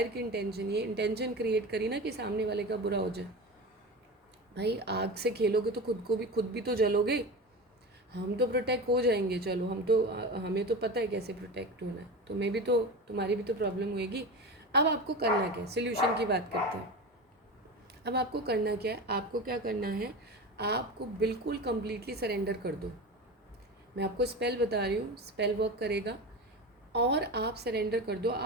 की इंटेंशन, ये इंटेंशन क्रिएट करी ना कि सामने वाले का बुरा हो जाए। भाई आग से खेलोगे तो खुद भी तो जलोगे। हम तो प्रोटेक्ट हो जाएंगे, चलो हमें तो पता है कैसे प्रोटेक्ट होना है, तुम्हारी भी तो प्रॉब्लम होएगी। अब आपको करना क्या है, सोल्यूशन की बात करते हैं। अब आपको करना क्या है, आपको क्या करना है, आपको बिल्कुल कंप्लीटली सरेंडर कर दो। मैं आपको स्पेल बता रही हूँ, स्पेल वर्क करेगा, और आप सरेंडर कर दो।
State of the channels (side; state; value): both; normal; correlation 0.27